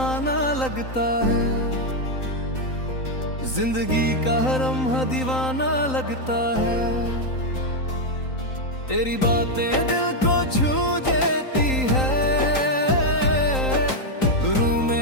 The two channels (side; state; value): right; late; 3.9 ms